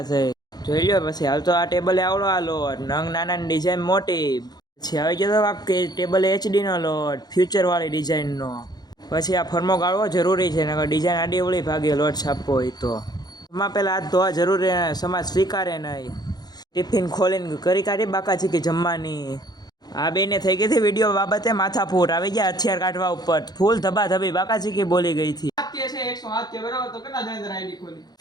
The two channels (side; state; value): right; late; 0.19 ms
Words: થઈ। જોઈ લ્યો પછી હાલ તો આ ટેબલે આવડો આ લોટ, નંગ નાના ડિઝાઇન મોટી। પછી આવી ગયો તો કે ટેબલ HD નો લોટ, ફ્યુચર વાળી ડિઝાઇનનો। પછી આ ફરમો ગાળવો જરૂરી છે, નકર ડિઝાઇન આડી અવળી ભાગે લોટ છાપવો હોય તો। એમાં પહેલાં હાથ ધોવા જરૂરી, સમાજ સ્વીકારે નહીં। ટિફિન ખોલીને કરી કાઢી બાકાચીકી જમવાની। આ બેને થઈ ગઈ હતી વિડીયો બાબતે માથાફૂટ, આવી ગયા હથિયાર કાઢવા ઉપર, ફૂલ ધબાધબી બાકાચીકી બોલી ગઈ હતી।